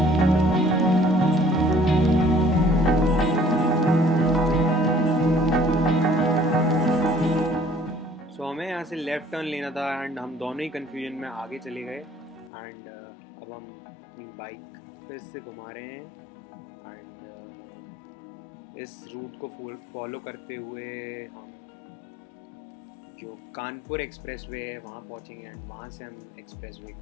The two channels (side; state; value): right; drops out; at 12.5 s